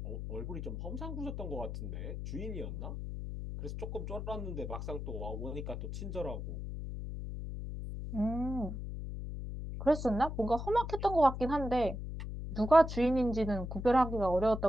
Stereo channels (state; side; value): noise; left; hum, 6 dB below the sound